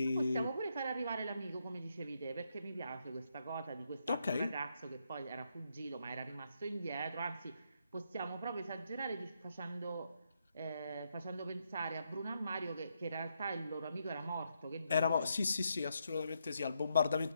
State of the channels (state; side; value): inverted; both; correlation -0.79